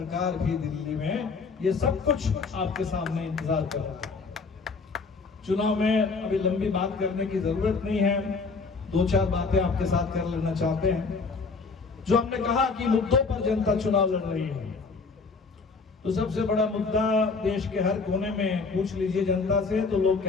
भी दिल्ली में, ये सब कुछ आपके सामने इंतजार कर रहा है। चुनाव में अभी लंबी बात करने की जरूरत नहीं है, 2-4 बातें आपके साथ कर लेना चाहते हैं। जो हमने कहा कि मुद्दों पर जनता चुनाव लड़ रही है, तो सबसे बड़ा मुद्दा देश के हर कोने में पूछ लीजिए जनता से तो लोग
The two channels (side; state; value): right; quieter; 4.4 dB